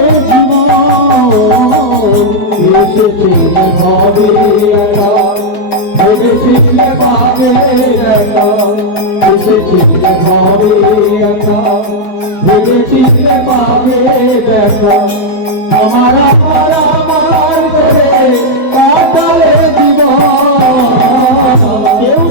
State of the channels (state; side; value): late; right; 4.6 ms